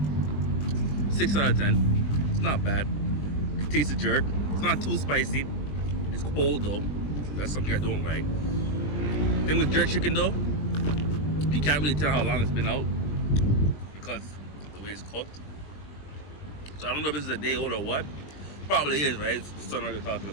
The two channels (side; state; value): right; late; 21 ms